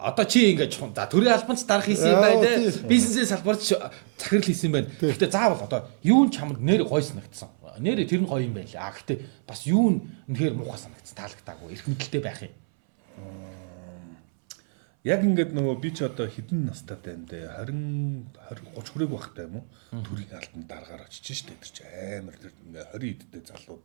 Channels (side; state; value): left; silent; 61 dB below the other